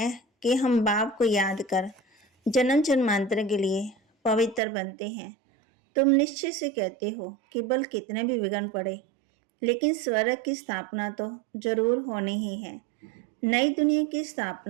कि हम बाप को याद कर जन्म जन्मांतर के लिए पवित्र बनते हैं। तुम निश्चय से कहते हो कि बल कितने भी विघ्न पड़े, लेकिन स्वर्ग की स्थापना तो जरूर होनी ही है। नई दुनिया की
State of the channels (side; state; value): left; drops out; at 4.6 s